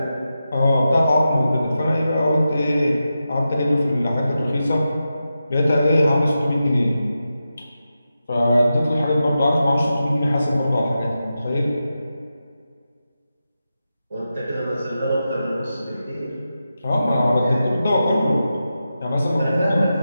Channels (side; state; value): both; inverted; correlation -0.90